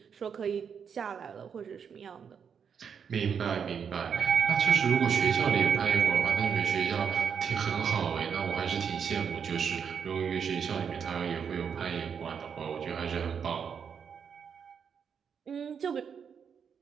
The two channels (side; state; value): left; quieter; 7.0 dB